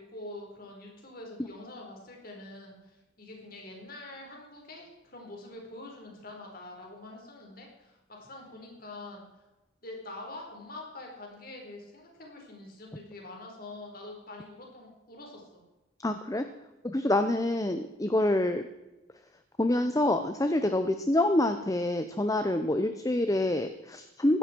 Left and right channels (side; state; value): both; normal; correlation 0.72